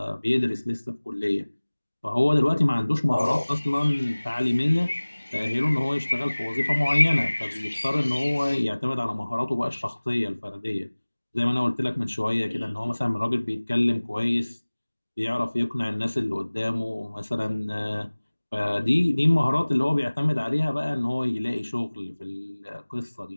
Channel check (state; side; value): inverted; both; correlation -1.00